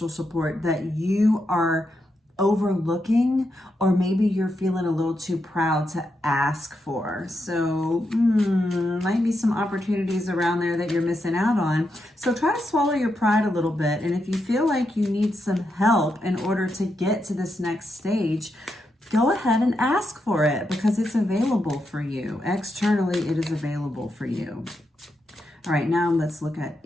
support that you are overlooking, or maybe you're feeling a little too proud to ask for. So might be some opportunities around there that you're missing out on. So try to swallow your pride a little bit. And if you feel like you need some help in order to get to this next stage, go ahead and ask for it, because it's available for you. Externally, it is available for you. All right, now let's look at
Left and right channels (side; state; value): both; normal; correlation 0.84